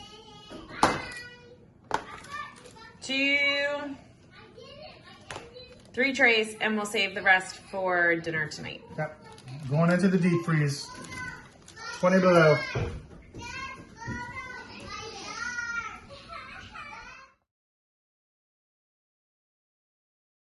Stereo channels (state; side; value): identical; both; correlation 1.00